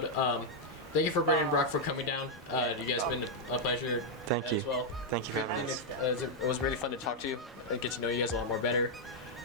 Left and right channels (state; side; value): normal; both; correlation -0.02